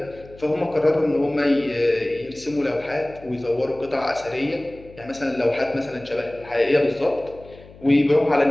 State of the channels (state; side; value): noise; left; hum, 21 dB below the sound